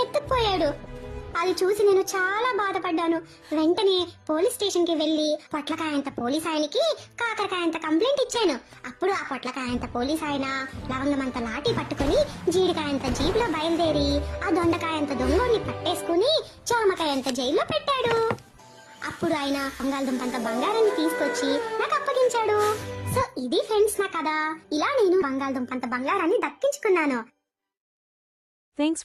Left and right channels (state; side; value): identical; both; correlation 1.00